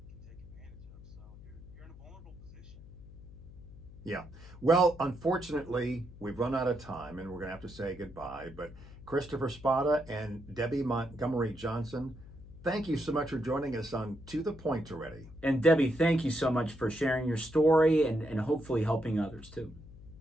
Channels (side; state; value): left; noise; hum, 17 dB below the sound